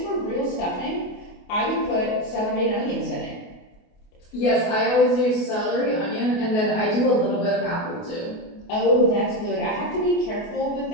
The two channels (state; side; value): late; right; 28 ms